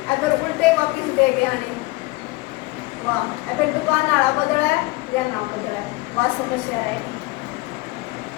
अगर उल्टे वापिस दे गया नहीं वाह, अगर दुकान वाला बदला है या ना बदला है वह समस्या रहेगी।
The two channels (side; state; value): right; quieter; 22.2 dB